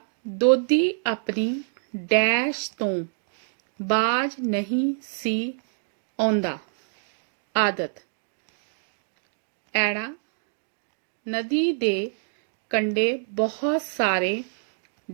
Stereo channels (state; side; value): silent; left; digital silence